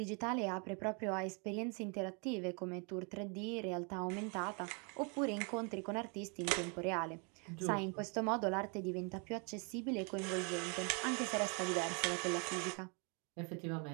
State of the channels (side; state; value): left; quieter; 35.1 dB